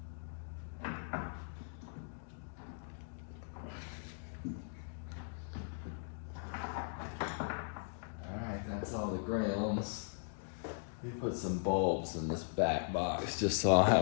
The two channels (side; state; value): right; silent; digital silence